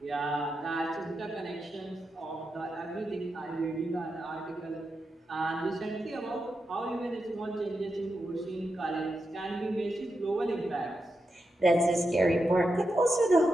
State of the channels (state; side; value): normal; both; correlation 0.87